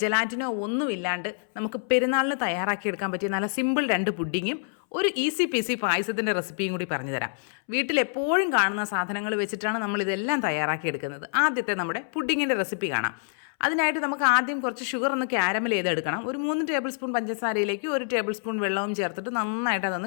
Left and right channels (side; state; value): right; silent; 60 dB below the other